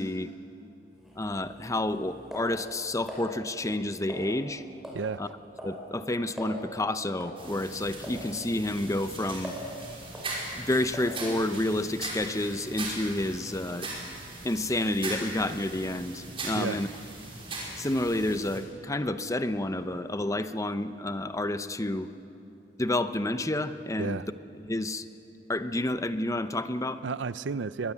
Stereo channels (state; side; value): normal; both; correlation 0.61